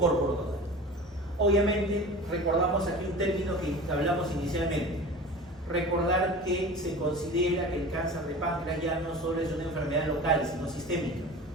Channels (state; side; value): normal; both; correlation 0.36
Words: caudal. Obviamente, recordamos aquí un término que hablamos inicialmente. Recordar que se considera que el cáncer de páncreas ya no solo es una enfermedad local, sino sistémica.